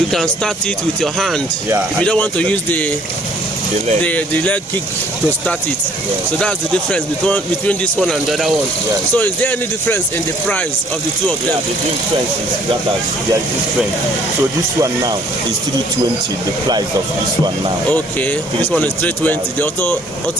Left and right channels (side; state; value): both; normal; correlation 0.60